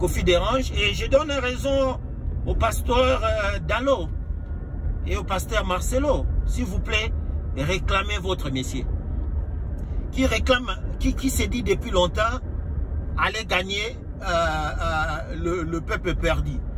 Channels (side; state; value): both; identical; correlation 1.00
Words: dérange et je donne raison au pasteur Dalo et au pasteur Marcelo. S'il vous plaît, réclamez votre messier. Qui réclame, qui s'est dit depuis longtemps, allait gagner le peuple perdu.